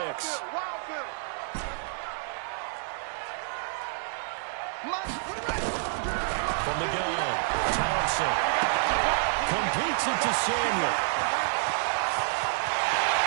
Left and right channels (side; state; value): left; silent; digital silence